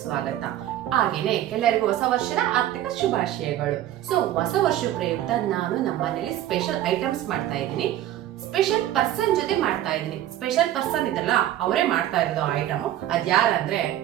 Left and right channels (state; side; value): quieter; left; 12.7 dB